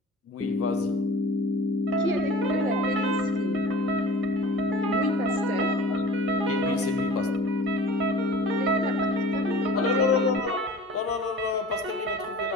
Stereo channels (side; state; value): both; normal; correlation 0.41